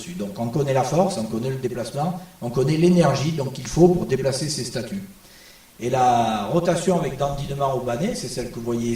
Donc on connaît la force, on connaît le déplacement, on connaît l'énergie qu'il faut pour déplacer ces statues. Et la rotation avec dandinement au banné, c'est celle que vous voyez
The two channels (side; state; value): both; identical; correlation 1.00